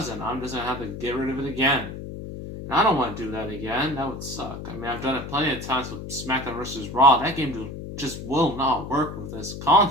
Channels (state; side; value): noise; left; hum, 9 dB below the sound